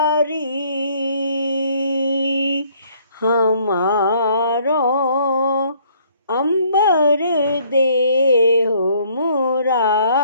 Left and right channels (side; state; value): both; inverted; correlation -0.62